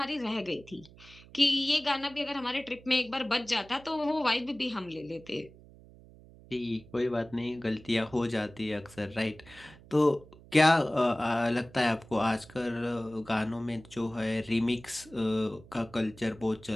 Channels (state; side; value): noise; right; hum, 22 dB below the sound